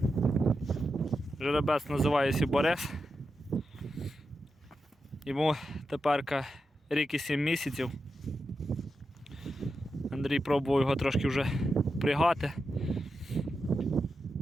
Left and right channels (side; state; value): both; normal; correlation 0.88